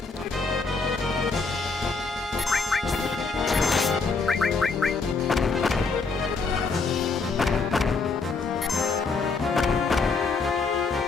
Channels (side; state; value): right; quieter; 4.3 dB